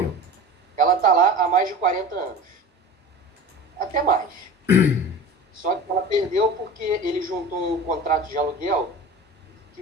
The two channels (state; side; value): normal; both; correlation 0.35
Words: Ela está lá há mais de 40 anos. Até mais. Só que ela perdeu porque ele juntou um contrato de aluguel